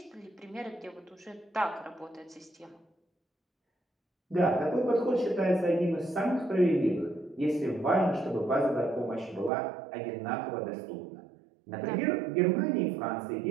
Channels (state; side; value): drops out; left; at 9.5 s